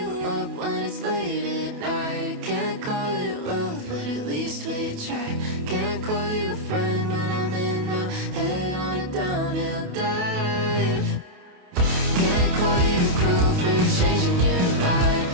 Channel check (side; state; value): left; late; 28 ms